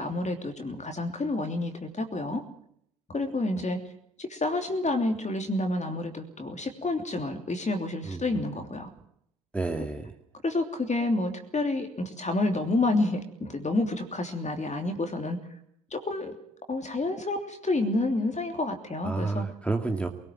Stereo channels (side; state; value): both; normal; correlation 0.67